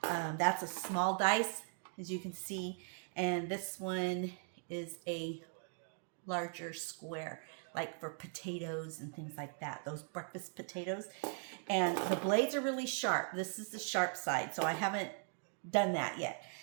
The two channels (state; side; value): silent; left; 52 dB below the other